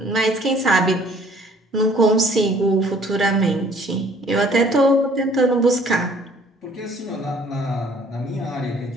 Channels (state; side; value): normal; both; correlation 0.57